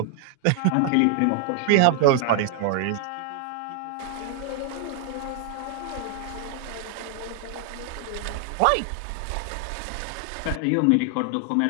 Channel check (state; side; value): different; both; correlation 0.00